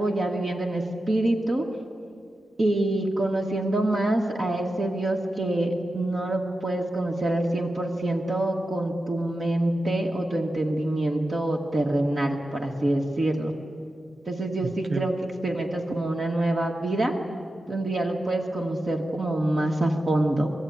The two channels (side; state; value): both; normal; correlation 0.91